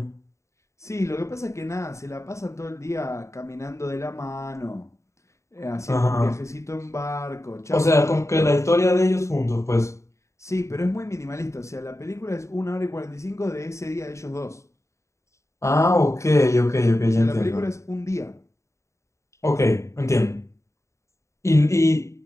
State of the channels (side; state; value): right; late; 0.14 ms